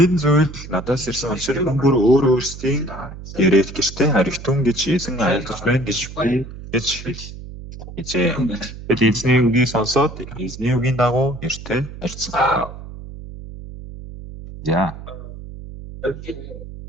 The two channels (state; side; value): noise; right; hum, 13 dB below the sound